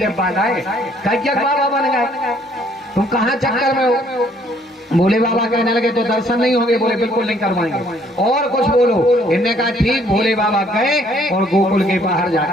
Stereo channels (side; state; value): both; normal; correlation 0.63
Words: बाद आए कज्जक बाबा बन गए। तुम कहाँ चक्कर में हो? भोले बाबा कहने लगे तो दर्शन नहीं होंगे। बोले बिल्कुल नहीं करवाएंगे। और कुछ बोलो। इनने कहा ठीक। भोले बाबा गए और गोकुल के बाहर